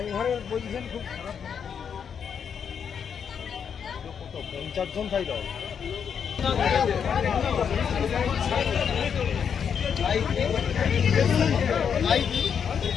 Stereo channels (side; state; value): right; quieter; 7.3 dB